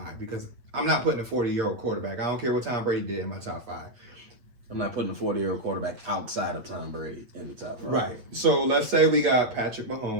because I'm not putting a 40-year-old quarterback. I don't care what Tom Brady did in my top 5. I'm not putting a 40-year-old quarterback outside of Tom Brady in the top 5. Right. So let's say we got Patrick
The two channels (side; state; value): left; late; 8.4 ms